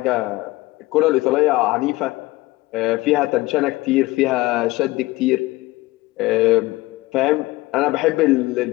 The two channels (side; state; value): right; quieter; 19.8 dB